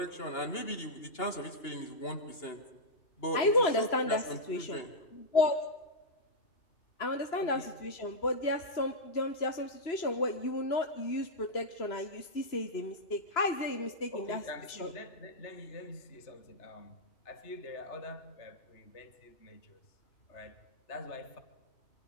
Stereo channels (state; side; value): late; right; 3.0 ms